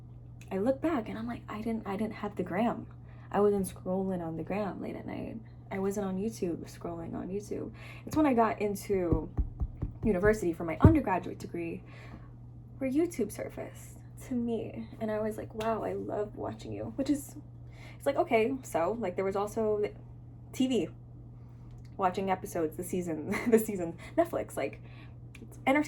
I look back and I'm like, I didn't have the gram. I wasn't scrolling on the gram late at night. I wasn't on YouTube scrolling on YouTube. It's when I got into university for my undergraduate degree where YouTube surfaced to me. And I was like, wow, I love watching you. It's like, okay, so like there was also TV, watching episodes, the season, Netflix, like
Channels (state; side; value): identical; both; correlation 1.00